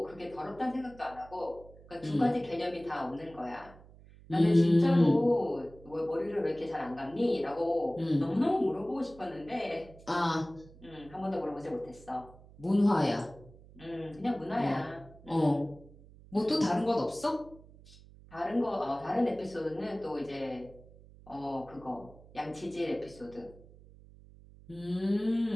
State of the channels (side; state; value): right; noise; hum, 22 dB below the sound